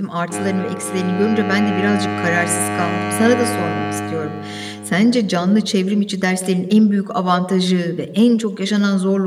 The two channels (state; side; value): identical; both; correlation 1.00